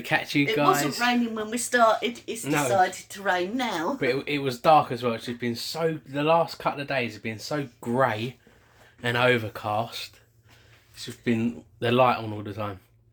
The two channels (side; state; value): both; identical; correlation 1.00